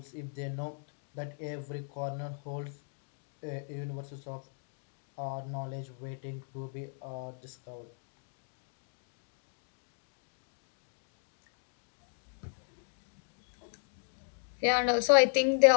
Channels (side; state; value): right; silent; digital silence